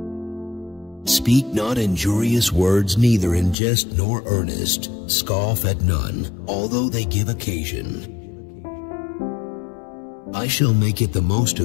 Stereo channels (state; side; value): drops out; right; at 3.6 s